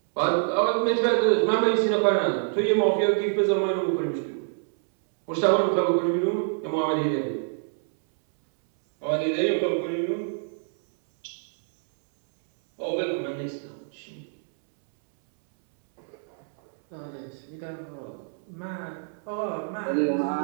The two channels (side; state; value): left; silent; 61 dB below the other